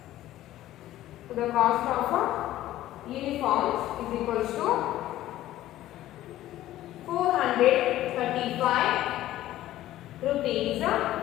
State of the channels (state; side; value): quieter; right; 14.3 dB